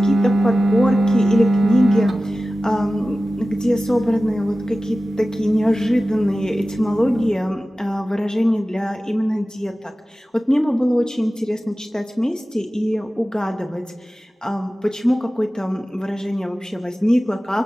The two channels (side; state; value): both; normal; correlation 0.96